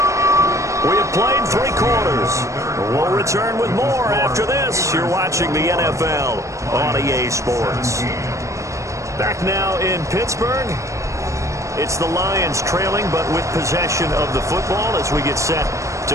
We have played 3 quarters. We'll return with more after this. You're watching the NFL on EA Sports. Back now in Pittsburgh. It's the Lions trailing, but with possession of the football as we get set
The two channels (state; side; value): late; left; 0.15 ms